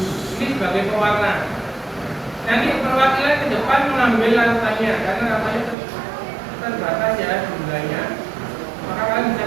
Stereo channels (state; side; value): drops out; left; at 5.8 s